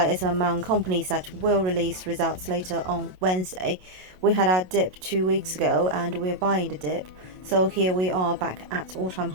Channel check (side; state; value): left; late; 27 ms